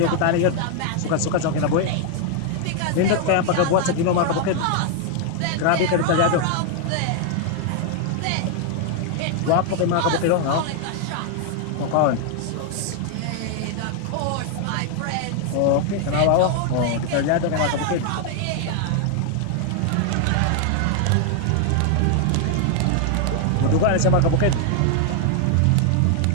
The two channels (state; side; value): different; both; correlation 0.00